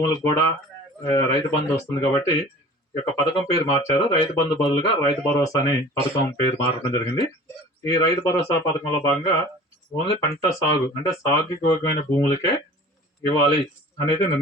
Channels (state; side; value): normal; both; correlation 0.43